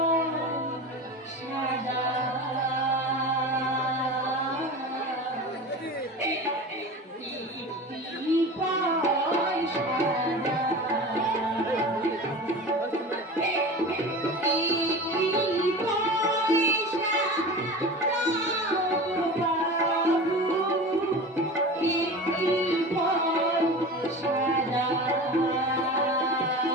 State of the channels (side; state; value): both; normal; correlation 0.33